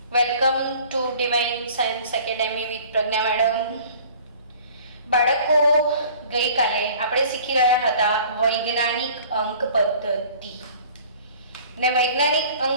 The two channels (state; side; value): inverted; both; correlation -0.49